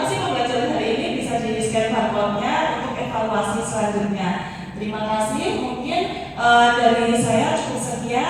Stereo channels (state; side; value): identical; both; correlation 1.00